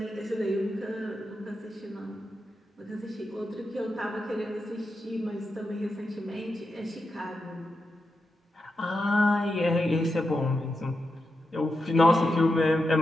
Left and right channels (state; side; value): normal; both; correlation 0.87